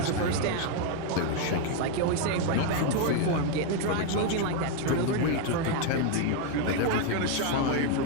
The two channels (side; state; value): both; different; correlation 0.01